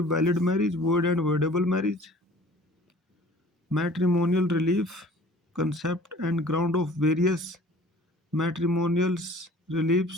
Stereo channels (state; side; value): normal; both; correlation 0.49